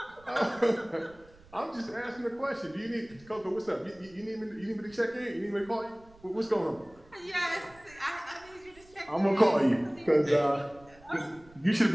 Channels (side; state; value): right; noise; rumble, 26 dB below the sound